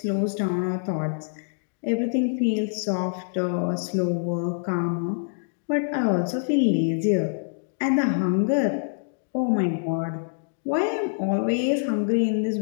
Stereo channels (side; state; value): right; silent; digital silence